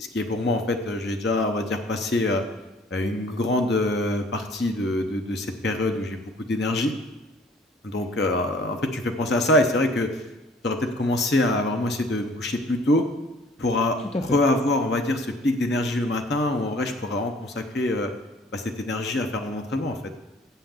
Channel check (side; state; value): both; normal; correlation 0.54